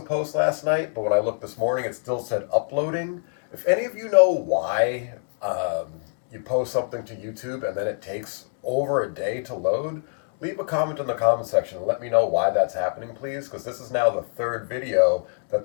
post last night, but when I looked this morning, it still said uploading. If any of you know why you post something to YouTube and then it takes over a day to load, leave a comment in the comment section and let me know why that's happening, please, because this is now the third video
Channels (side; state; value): right; silent; 62 dB below the other